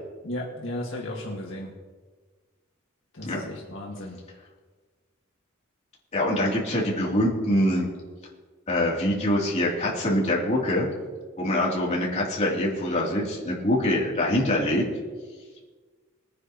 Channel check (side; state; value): both; normal; correlation 0.42